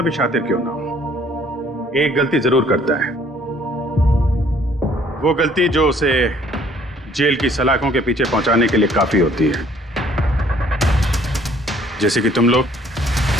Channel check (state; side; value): normal; both; correlation 0.60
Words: भी शातिर क्यों ना हो, एक गलती जरूर करता है। वो गलती जो उसे जेल की सलाखों के पीछे पहुंचाने के लिए काफी होती है, जैसे कि तुम लोग।